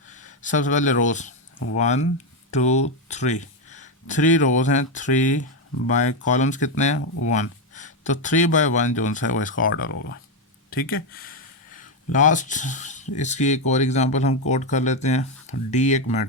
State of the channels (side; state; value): both; normal; correlation 0.06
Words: सबसे पहले रोज 1 2 3, 3 रोज हैं, 3 बाय कॉलम्स कितने हैं 1, तो 3 बाय 1 जो है वो इसका ऑर्डर होगा। ठीक है। लास्ट इसकी एक और एग्जांपल हम कोड कर लेते हैं। डी एक